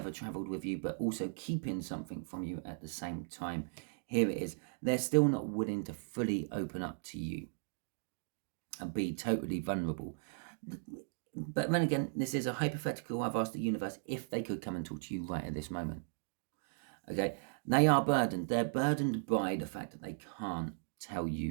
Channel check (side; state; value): left; silent; digital silence